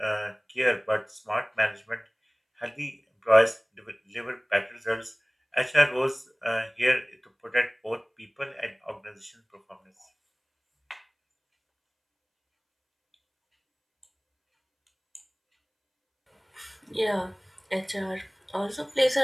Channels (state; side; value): identical; both; correlation 1.00